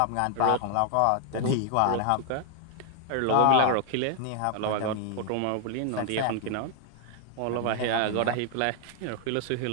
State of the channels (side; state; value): both; different; correlation 0.00